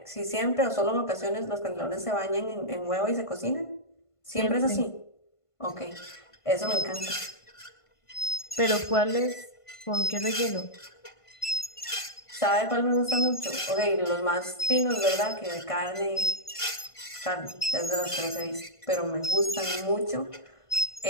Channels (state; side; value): late; right; 1.5 ms